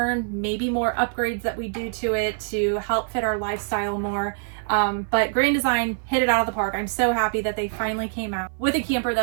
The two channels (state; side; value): silent; left; 56 dB below the other